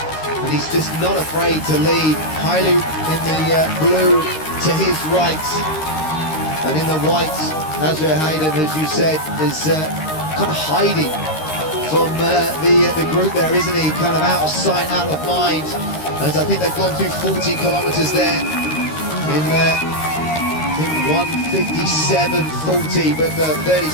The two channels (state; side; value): late; right; 13 ms